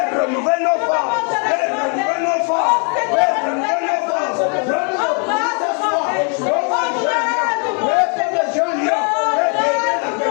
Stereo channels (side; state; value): right; quieter; 39.3 dB